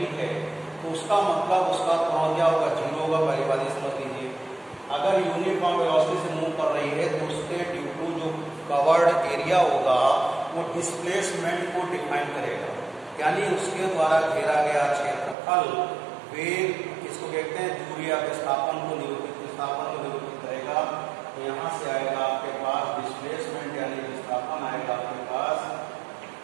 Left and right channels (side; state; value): left; drops out; at 15.4 s